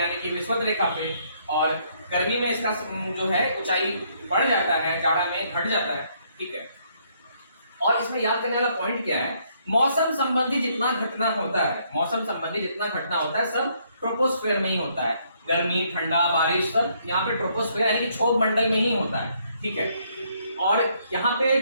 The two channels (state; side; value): inverted; both; correlation -0.70